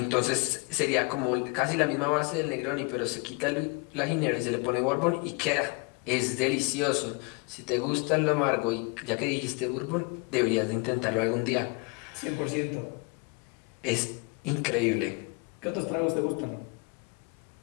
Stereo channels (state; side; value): quieter; right; 29.4 dB